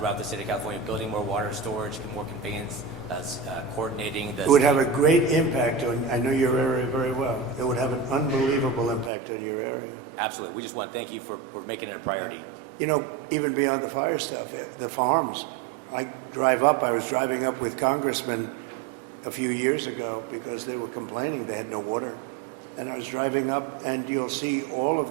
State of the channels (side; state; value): left; drops out; at 9.1 s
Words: the state of California, building more water storage, more conveyance, coordinating the... It would have a great impact on, I know your area very well. It would have an unbelievable impact on your area. Absolutely. We just want to thank you for making it a priority. You know, even beyond the fire stuff, the farms. I was driving up with congressmen a few years ago because they were complaining they had no water. And I was driving up, and you'll see all of